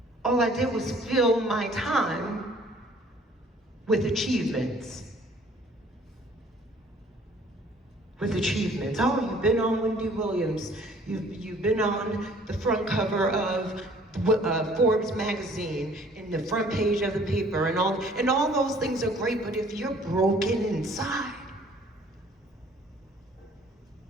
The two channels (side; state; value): both; normal; correlation 0.55